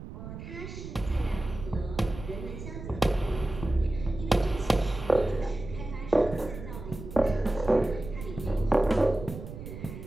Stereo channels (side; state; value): right; noise; rumble, 10 dB below the sound